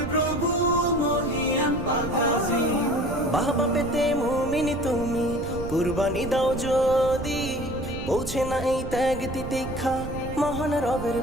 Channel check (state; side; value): noise; right; rumble, 9 dB below the sound